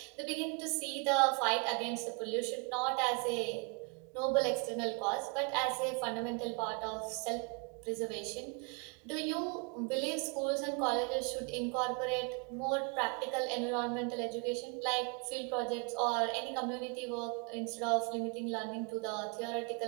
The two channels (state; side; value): quieter; left; 34.4 dB